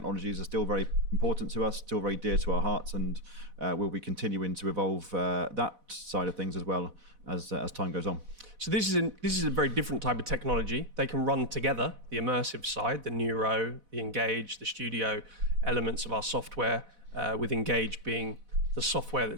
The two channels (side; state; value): left; late; 4.0 ms